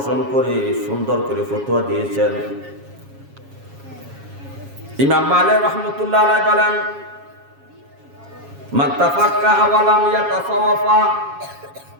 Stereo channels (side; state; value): left; late; 7.3 ms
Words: করে সুন্দর করে ফতোয়া দিয়েছেন। ইমাম মালিক রাহমাতুল্লাহ আলাইহি বলেন, মান তাফাক্কাহা ওয়া লাম ইয়াতাসাওয়াফা,